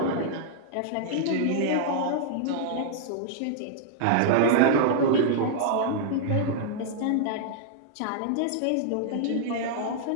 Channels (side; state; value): both; different; correlation -0.01